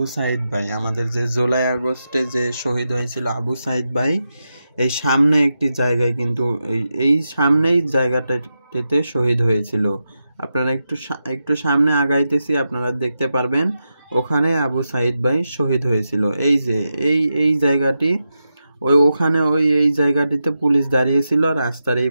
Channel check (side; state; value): both; inverted; correlation -0.89